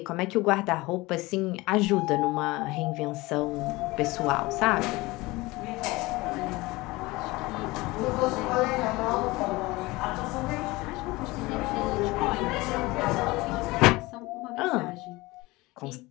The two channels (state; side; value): quieter; right; 21.4 dB